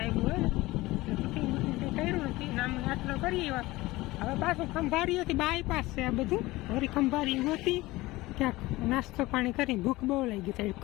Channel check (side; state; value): right; quieter; 19.5 dB